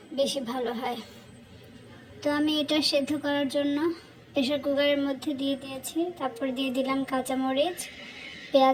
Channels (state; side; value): identical; both; correlation 1.00